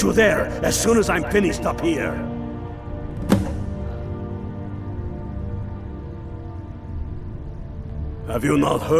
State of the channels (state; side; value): identical; both; correlation 1.00